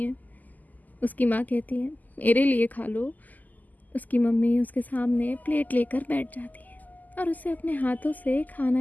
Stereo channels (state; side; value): late; right; 0.082 ms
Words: है। उसकी माँ कहती है, मेरे लिए खा लो। उसकी मम्मी उसके सामने प्लेट लेकर बैठ जाती है और उसे अपने हाथों से